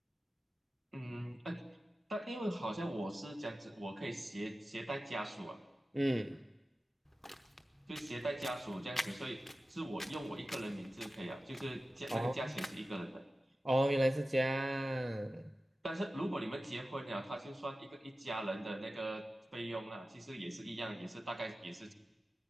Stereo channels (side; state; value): both; normal; correlation 0.95